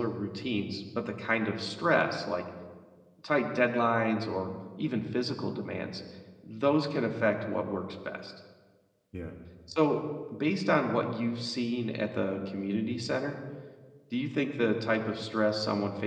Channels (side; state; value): both; identical; correlation 1.00